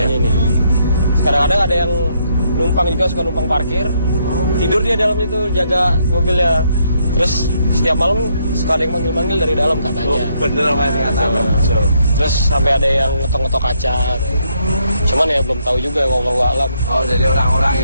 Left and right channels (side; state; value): both; inverted; correlation -0.73